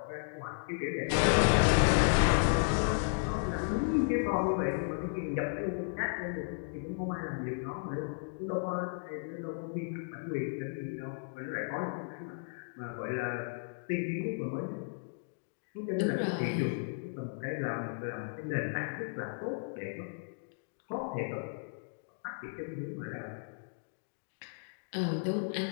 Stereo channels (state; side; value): silent; right; digital silence